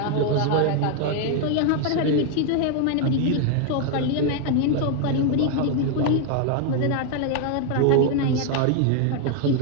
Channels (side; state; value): both; different; correlation 0.01